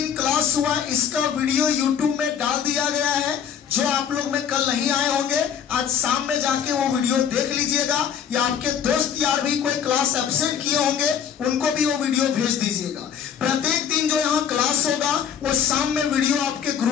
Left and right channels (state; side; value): quieter; right; 8.1 dB